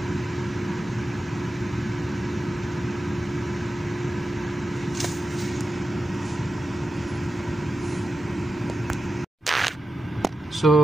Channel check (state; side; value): normal; both; correlation 0.90